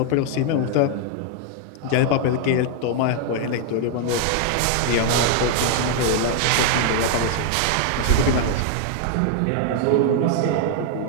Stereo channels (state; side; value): different; both; correlation 0.00